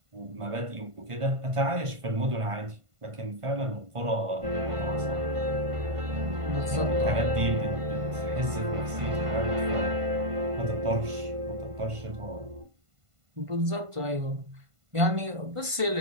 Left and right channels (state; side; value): late; left; 1.5 ms